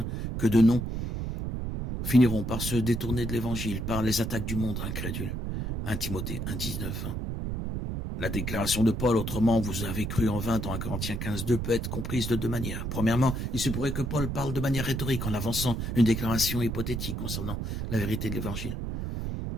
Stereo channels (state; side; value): noise; right; rumble, 3 dB below the sound